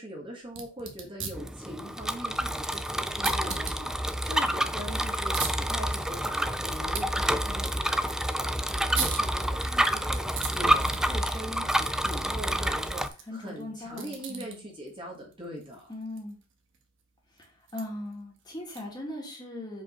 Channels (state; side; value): normal; both; correlation 0.78